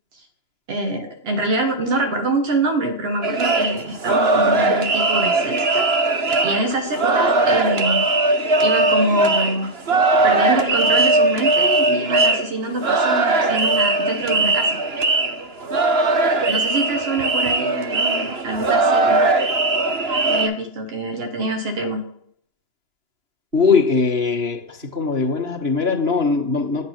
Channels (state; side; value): late; left; 2.9 ms